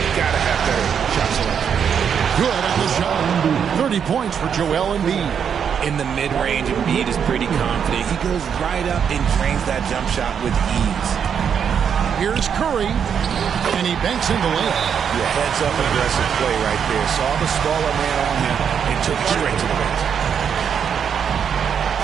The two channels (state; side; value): quieter; left; 7.6 dB